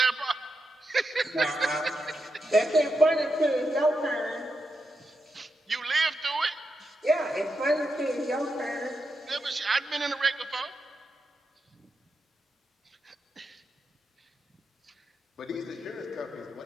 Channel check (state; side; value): normal; both; correlation 0.85